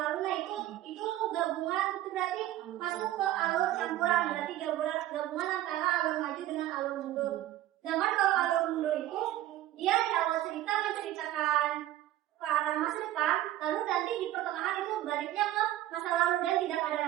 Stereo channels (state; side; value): quieter; left; 14.0 dB